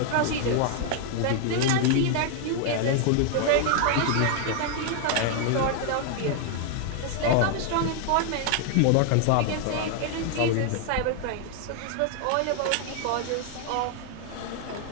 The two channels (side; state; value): both; different; correlation 0.00